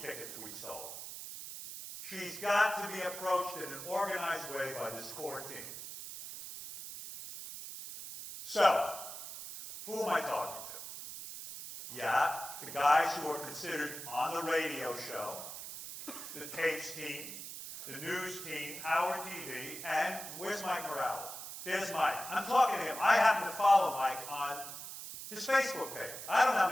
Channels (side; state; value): right; noise; hiss, 9 dB below the sound